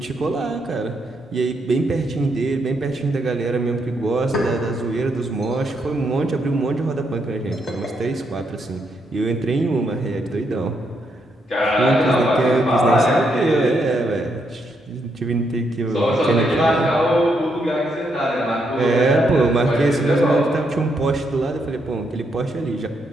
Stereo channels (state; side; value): normal; both; correlation 0.78